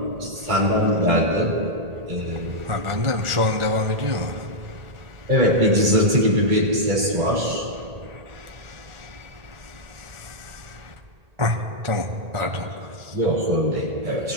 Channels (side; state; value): left; late; 1.8 ms